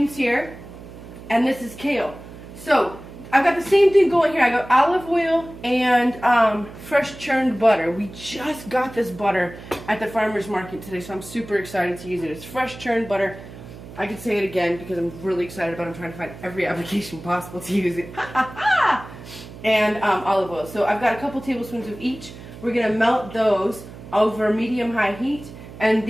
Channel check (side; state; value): right; noise; hum, 15 dB below the sound